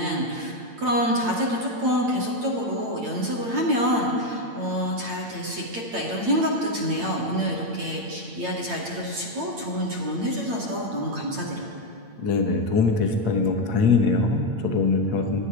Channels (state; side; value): late; left; 8.8 ms